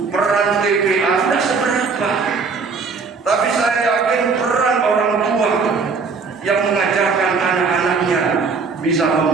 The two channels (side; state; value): left; quieter; 4.8 dB